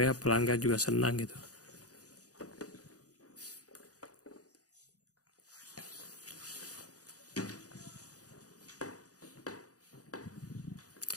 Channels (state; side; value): late; right; 0.67 ms